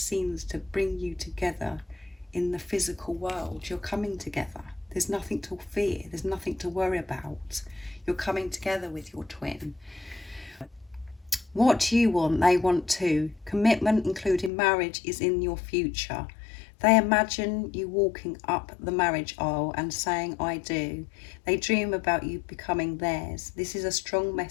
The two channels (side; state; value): right; drops out; at 14.5 s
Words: to bring you together in the physical world. You're coming together. There's nothing to fear. There's nothing to worry about. You're coming together with your twin. What do you want? They want too. Commitment, including marriage, is in your future. They imagine you walking up the marriage aisle and saying, I do. They dream about you becoming theirs. This is a strong